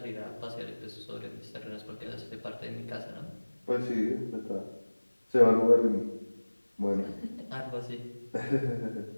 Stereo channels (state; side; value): inverted; both; correlation -1.00